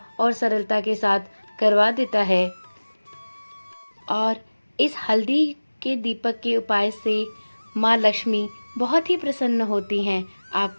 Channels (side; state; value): both; inverted; correlation -1.00